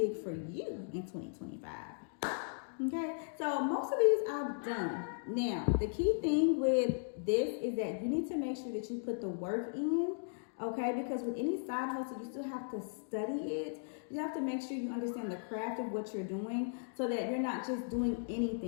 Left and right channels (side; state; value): right; silent; digital silence